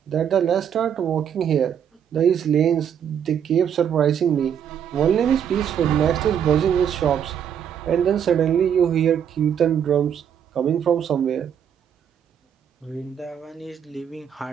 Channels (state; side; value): quieter; left; 8.6 dB